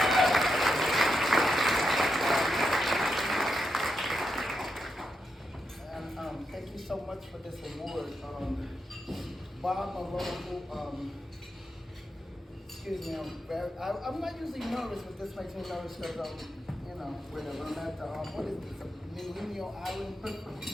And thank you so much for this award. Bob Mulino, excuse me, I'm not usually nervous, but this makes me nervous because you know, whatever. I'm at the, what is this, Mulino Island?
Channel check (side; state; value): both; normal; correlation 0.85